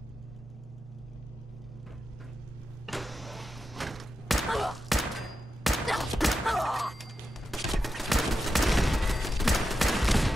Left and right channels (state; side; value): normal; both; correlation 0.89